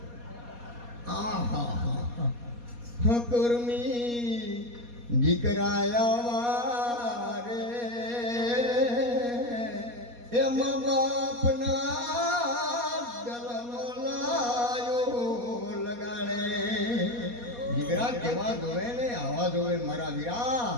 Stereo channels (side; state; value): left; late; 4.2 ms